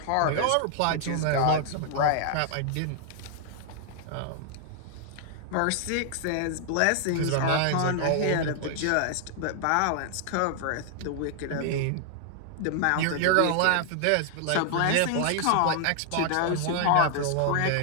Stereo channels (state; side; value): different; both; correlation 0.00